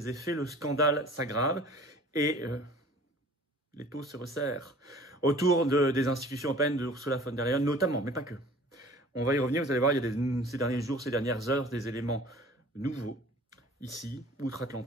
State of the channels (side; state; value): both; normal; correlation 0.47